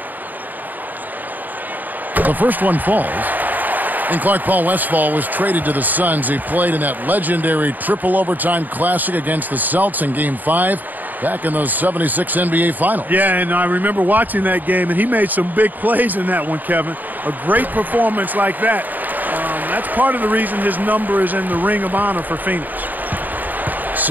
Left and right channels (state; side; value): late; left; 0.086 ms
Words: The first one falls. And Clark, Paul Westphal was traded to the Suns. He played in that legendary triple overtime classic against the Celtics in Game 5 back in those '76 NBA Finals. Yeah, and I remember watching that game, and he made some big plays in that one, Kevin. A great performance like that. That's part of the reason his number is in the Ring of Honor for Phoenix.